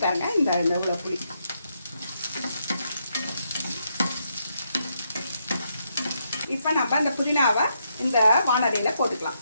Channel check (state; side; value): inverted; both; correlation -0.79